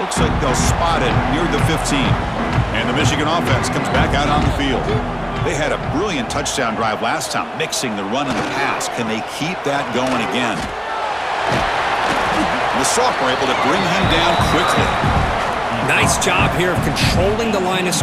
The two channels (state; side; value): identical; both; correlation 1.00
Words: Looks like they'll spot it near the 15. And the Michigan offense comes back out on the field. They had a brilliant touchdown drive last time, mixing the run and the pass. Can they keep that going again? The sophomore able to bring him down quickly. Nice job here of controlling the line of